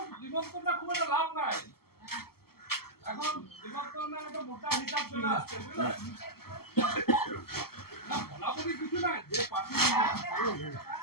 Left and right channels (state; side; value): late; right; 0.95 ms